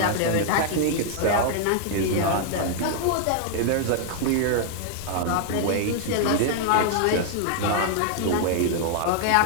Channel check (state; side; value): different; both; correlation 0.00